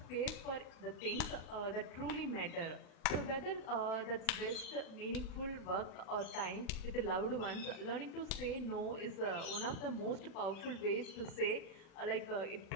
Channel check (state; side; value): late; right; 36 ms